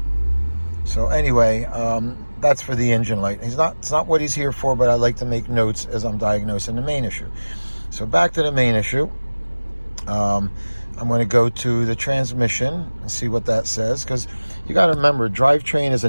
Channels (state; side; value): inverted; both; correlation -1.00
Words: So anyway, that's for the engine light. It's not what he's here for, but I like to make notes as I'm diagnosing the main issue. So back to the main issue. I'm going to go to the transmission and see what that says, because you got to remember, drivetrain is a